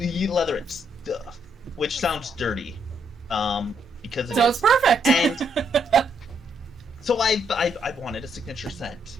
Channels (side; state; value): both; normal; correlation 0.74